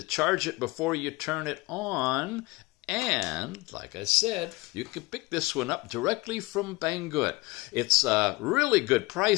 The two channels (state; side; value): quieter; right; 22.6 dB